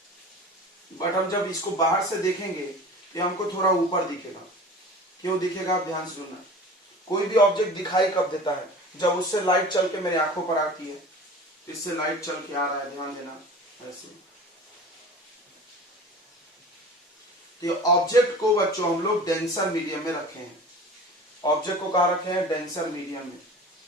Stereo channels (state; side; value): normal; both; correlation 0.39